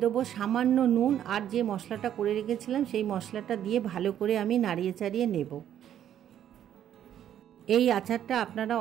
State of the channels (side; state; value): left; quieter; 10.5 dB